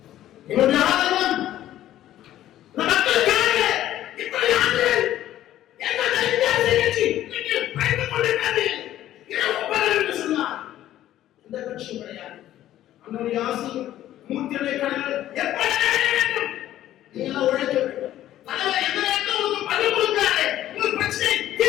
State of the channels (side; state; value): right; quieter; 13.0 dB